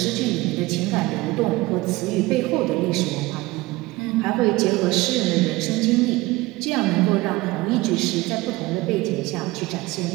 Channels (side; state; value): left; quieter; 20.6 dB